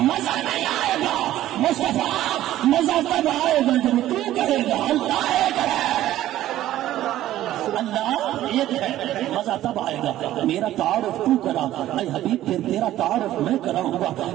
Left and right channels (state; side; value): quieter; left; 13.8 dB